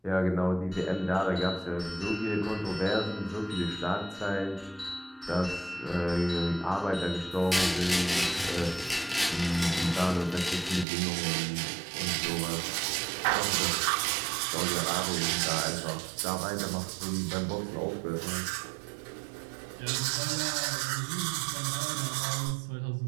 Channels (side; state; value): left; drops out; at 10.9 s